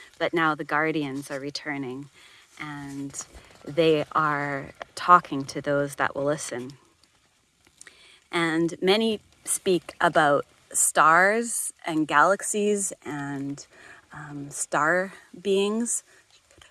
but now the guardians are returning, and they are talking to those that will listen. And many speak about stars and galaxies and star beings,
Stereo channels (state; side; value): identical; both; correlation 1.00